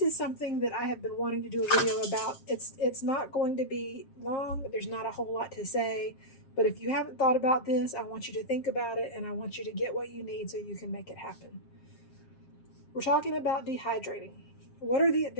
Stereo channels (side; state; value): right; late; 7.5 ms